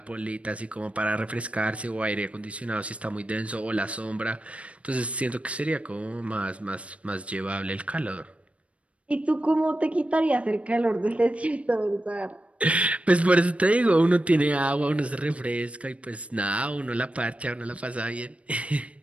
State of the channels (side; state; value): left; late; 0.063 ms